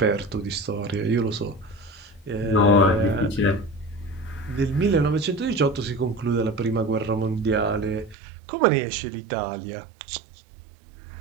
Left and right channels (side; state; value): left; drops out; at 8.2 s